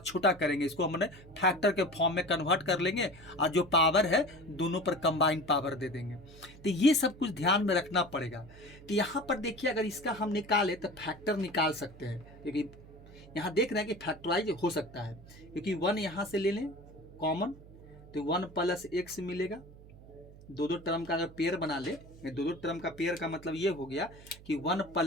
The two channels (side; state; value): right; noise; hum, 20 dB below the sound